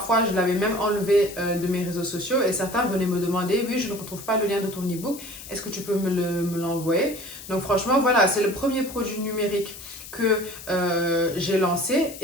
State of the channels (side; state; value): left; noise; hiss, 14 dB below the sound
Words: je l'avais même enlevé de mes réseaux sociaux et certains venaient me demander, oui, je ne retrouve pas le lien de ton e-book, est-ce que tu peux me l'envoyer? Donc franchement, voilà, c'est le premier produit numérique que j'ai lancé